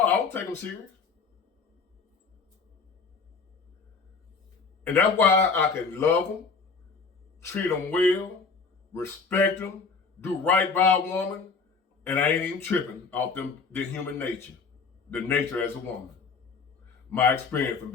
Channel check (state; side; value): quieter; right; 4.9 dB